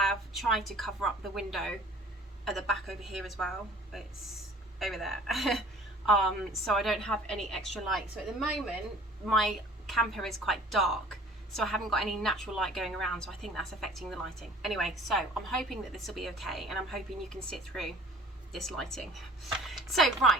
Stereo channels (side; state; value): both; normal; correlation 0.50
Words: tried to cover up the window at the back over here as well. It's over there. So I don't have any extra light. So at the moment my camper is quite dark, so I haven't got any natural light going around, so I think that's affecting the lighting. Anyway, so I'm hoping that this will be okay, and I'm hoping you can sit through this lighting. So